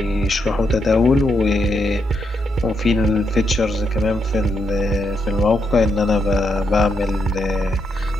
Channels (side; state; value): both; normal; correlation 0.80